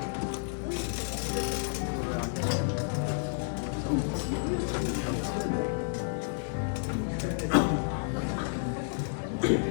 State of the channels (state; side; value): silent; right; 57 dB below the other